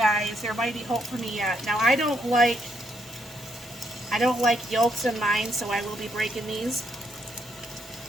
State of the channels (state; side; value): normal; both; correlation 0.76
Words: There might be hope for me yet. Now, I don't like yolks in mine, so I will be breaking these